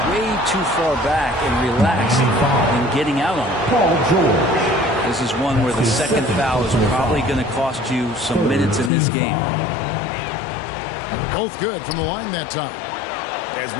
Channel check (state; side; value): drops out; right; at 8.9 s